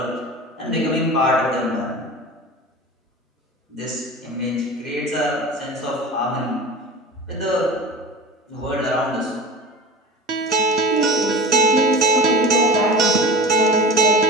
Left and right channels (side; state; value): both; normal; correlation 0.33